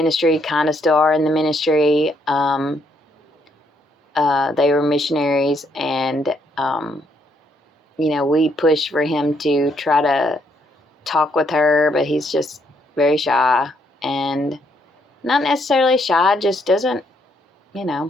kind of still are in the ministry. They were missionaries, and, we pushed for him to try to talk with her, but he's just very shy, and not necessarily shy, just doesn't,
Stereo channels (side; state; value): both; normal; correlation 0.73